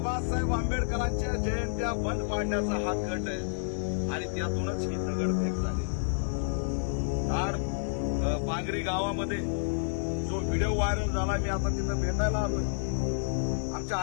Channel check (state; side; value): silent; right; digital silence